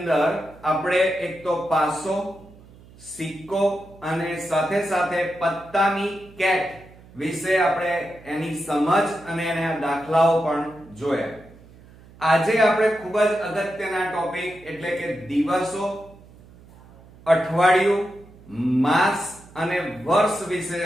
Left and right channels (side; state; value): right; noise; hum, 23 dB below the sound